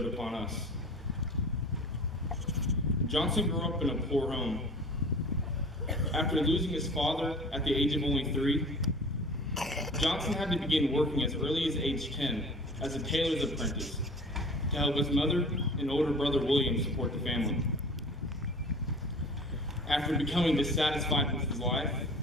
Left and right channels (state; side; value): normal; both; correlation 0.41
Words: upon us. Johnson grew up in a poor home. After losing his father at the age of only 3, Johnson had to begin working as early as age 10 as a tailor's apprentice to help his mother and older brother William support the family. After becoming dissatisfied with his life,